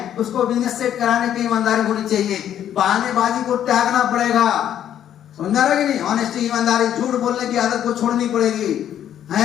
उसको बिजनेस सेट कराने की ईमानदारी होनी चाहिए। बहानेबाजी को त्यागना पड़ेगा। समझा रहे कि नहीं? ऑनेस्टी, ईमानदारी। झूठ बोलने की आदत को छोड़नी पड़ेगी।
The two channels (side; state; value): right; quieter; 10.4 dB